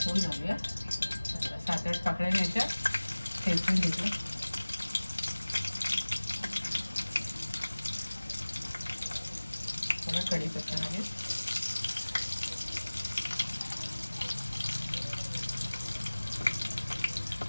घालूया। 7-8 पाकळ्या घ्यायच्या, ठेचून घेतलं। थोडा कढीपत्ता घालूया।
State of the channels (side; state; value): both; inverted; correlation -1.00